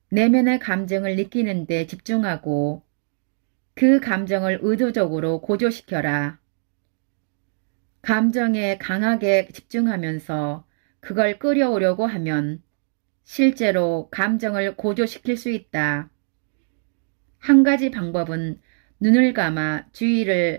내면의 감정을 느끼는 데 집중하고 그 감정을 의도적으로 고조시켜라. 감정에 강하게 집중하면서 그걸 끌어오려고 하면 실제로 감정을 고조시킬 수 있다. 한 가지 방법은 눈을 감아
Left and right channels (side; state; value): left; silent; digital silence